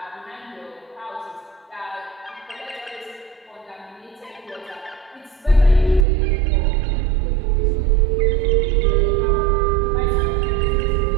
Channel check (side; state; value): left; drops out; at 6.1 s